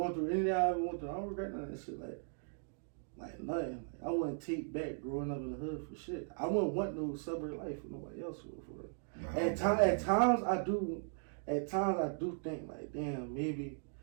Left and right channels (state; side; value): silent; left; digital silence